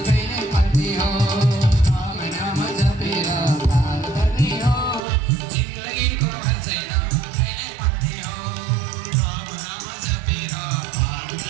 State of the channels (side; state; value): left; drops out; at 5.0 s